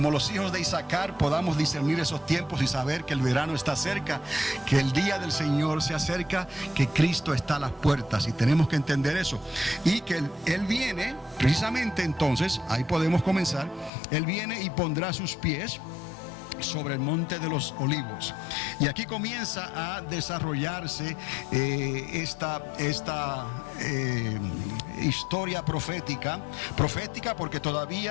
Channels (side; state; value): right; drops out; at 13.9 s